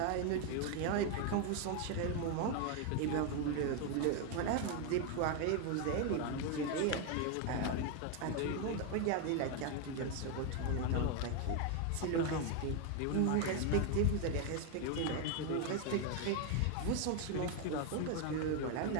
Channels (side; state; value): both; different; correlation 0.01